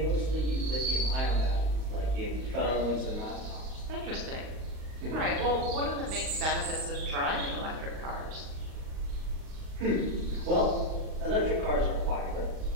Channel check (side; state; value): left; late; 38 ms